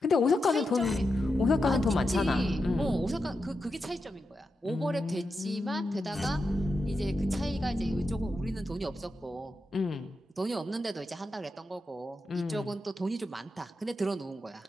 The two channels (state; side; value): normal; both; correlation 0.88